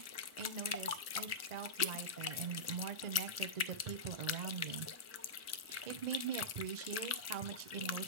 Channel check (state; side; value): late; left; 1.4 ms